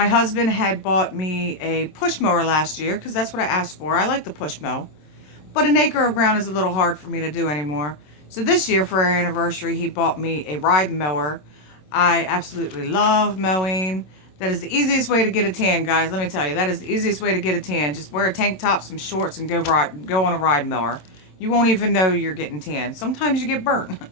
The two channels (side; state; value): right; late; 27 ms